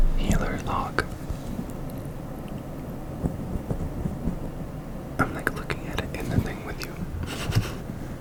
Healer Log. I'm like looking at it in the thing with you.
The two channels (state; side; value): identical; both; correlation 1.00